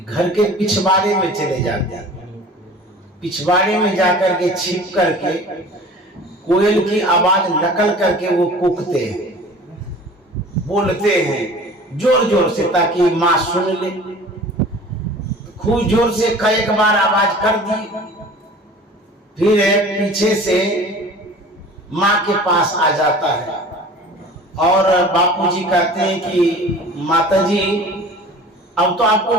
के पिछवाड़े में चले जाते हैं, पिछवाड़े में जाकर के छिप करके कोयल की आवाज नकल करके वो कूकते हैं, बोलते हैं जोर जोर से ताकि माँ सुन ले। खूब जोर से कई बार आवाज कर दी, फिर पीछे से माँ के पास आ जाता है और बापूजी कहते हैं कि माताजी, अब तो आपको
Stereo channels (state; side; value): normal; both; correlation 0.43